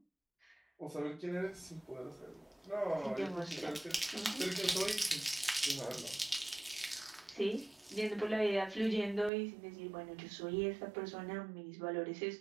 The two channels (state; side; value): drops out; left; at 9.3 s